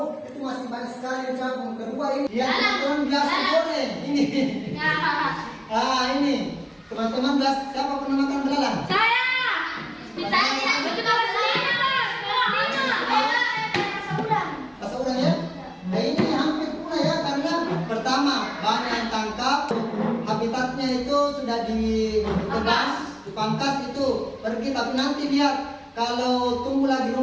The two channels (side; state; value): both; identical; correlation 1.00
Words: itu masih banyak sekali capung. Kedua ini yang teman-teman biasa goreng ini. Ini teman-teman biasa, siapa pernah makan belalang? Rasa udang ya? Nah ini hampir punah ya, karena pertama banyak yang tangkap, habitatnya itu sudah ditebas, dipangkas itu pergi, tapi nanti lihat kalau tumbuh lagi